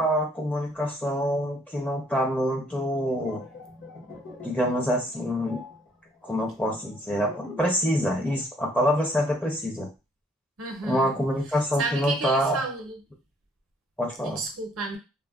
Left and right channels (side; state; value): both; normal; correlation 0.64